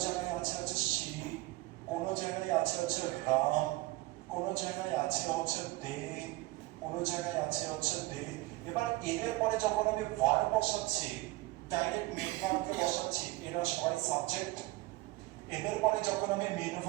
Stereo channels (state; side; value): quieter; left; 20.2 dB